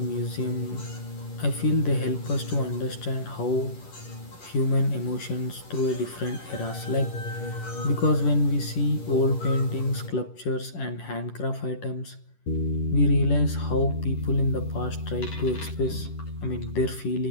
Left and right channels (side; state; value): right; late; 11 ms